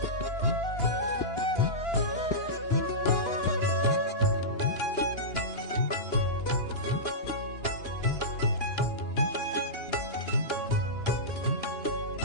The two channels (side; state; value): right; late; 2.9 ms